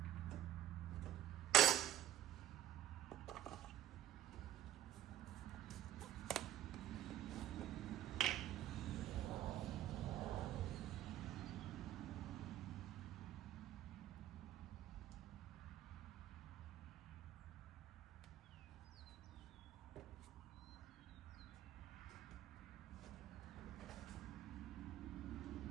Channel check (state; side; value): quieter; left; 12.2 dB